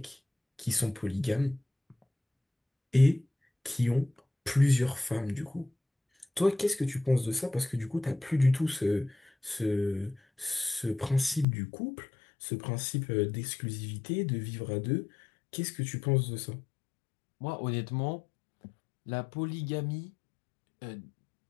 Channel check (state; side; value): drops out; right; at 11.5 s